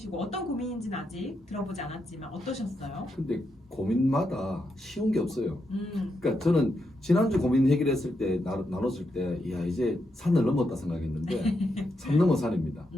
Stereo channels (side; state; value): both; normal; correlation 0.83